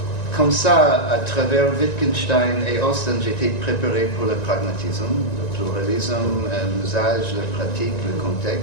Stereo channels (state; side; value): late; right; 1.9 ms